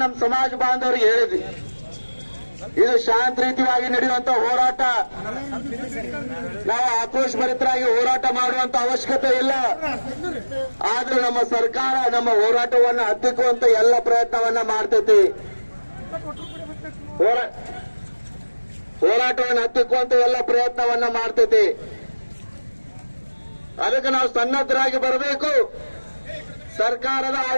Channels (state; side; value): inverted; both; correlation -1.00